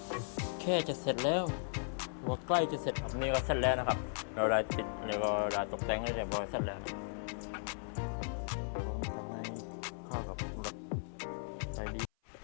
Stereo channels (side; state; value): right; silent; 53 dB below the other